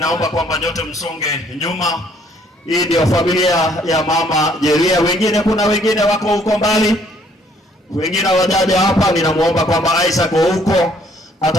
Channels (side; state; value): both; normal; correlation 0.63